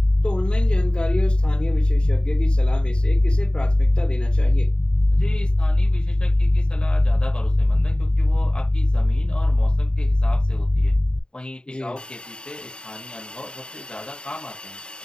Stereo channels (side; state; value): right; late; 0.050 ms